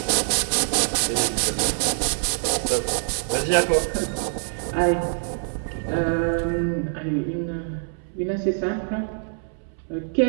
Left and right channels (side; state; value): left; silent; 62 dB below the other